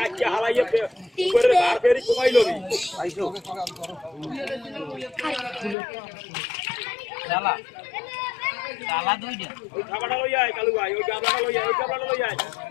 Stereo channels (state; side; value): drops out; right; at 5.8 s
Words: হালাইয়া উপরে বার ফেরি কমাই লবি আইছো চালা চালা দুইটা ওই খাবারটা লই আয় কালু ভাই ওই গাবলাটা লই আয় ওই গাবলাটা লই আয়